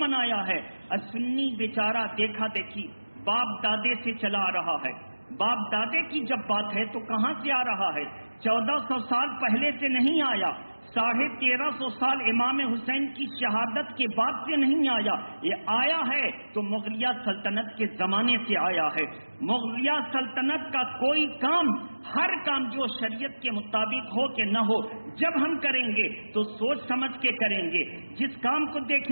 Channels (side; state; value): both; inverted; correlation -1.00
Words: ہے، اور سنی بیچارہ دیکھا دیکھی باپ دادے سے چلا آ رہا ہے۔ باپ دادے کی جب بات ہے تو کہاں سے آ رہا ہے؟ 1400 سال پہلے سے نہیں آیا، 1350 سال امام حسین کی شہادت کے بعد سے نہیں آیا، یہ آیا ہے تو مغلیہ سلطنت کے زمانے سے آیا ہے۔ مغلیہ سلطنت کا کوئی کام، ہر کام جو شریعت کے مطابق ہو کہ نہ ہو، جب ہم کریں گے تو سوچ سمجھ کے کریں گے۔ جس کام کو